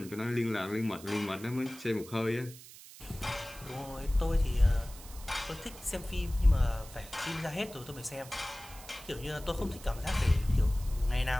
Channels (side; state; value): right; noise; hiss, 17 dB below the sound